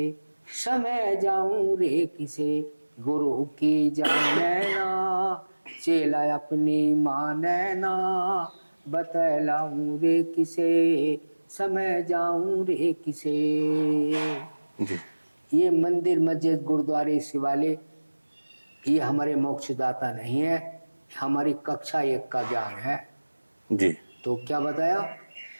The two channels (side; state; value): both; inverted; correlation -1.00